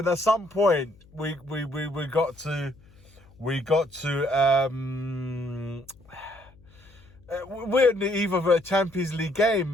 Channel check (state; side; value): noise; left; hum, 27 dB below the sound